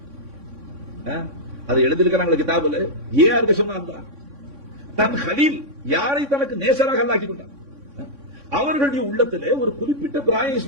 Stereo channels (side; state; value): left; late; 3.6 ms